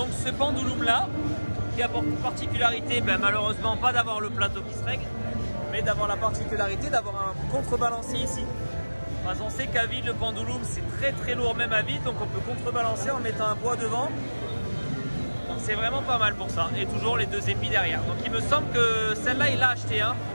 ce pendulum là, qui a pour particularité, malheureusement pas d'avoir le plateau qui se règle, mais d'avoir la particularité d'avoir un contrebalancier ici. Parce qu'on sait qu'à vide le pendulum c'est très lourd même à vide, donc on peut contrebalancer en mettant un poids devant. Donc c'est vraiment pas mal pour ça. Et toujours les deux épis derrière. Donc il me semble que celle-là il l'a acheté, hein.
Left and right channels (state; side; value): inverted; both; correlation -1.00